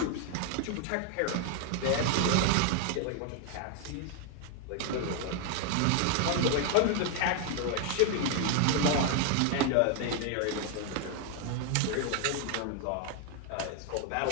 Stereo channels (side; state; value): both; different; correlation 0.00